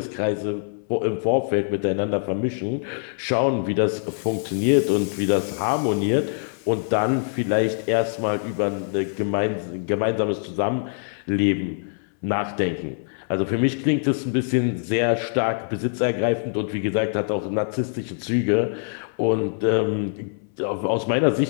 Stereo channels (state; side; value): silent; right; 61 dB below the other